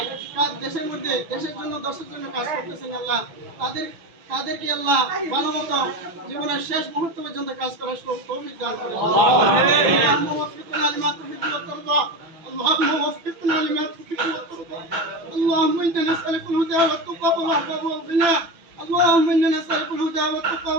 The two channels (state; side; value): late; left; 6.2 ms